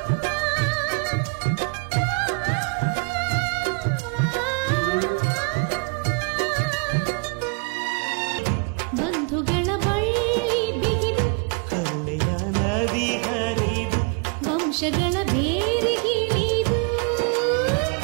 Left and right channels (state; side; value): quieter; left; 35.8 dB